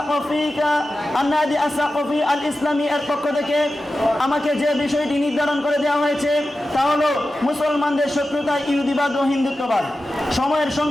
আস-সাকফি আল ইসলামী এর পক্ষ থেকে আমাকে যে বিষয়টি নির্ধারণ করে দেওয়া হয়েছে তা হলো মুসলমানদের শত্রুতা, ইহুদিবাদ ও হিন্দুত্ববাদ। সময়ের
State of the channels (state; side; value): normal; both; correlation 0.93